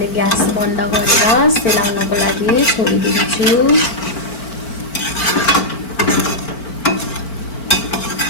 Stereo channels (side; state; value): right; late; 4.4 ms